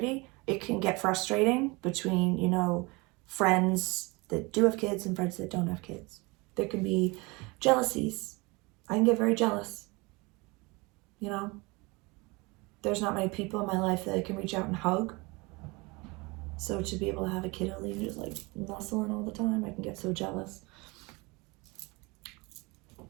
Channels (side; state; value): left; quieter; 25.8 dB